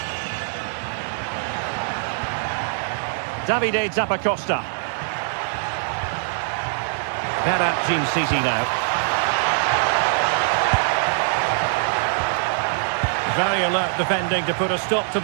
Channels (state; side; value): silent; left; 64 dB below the other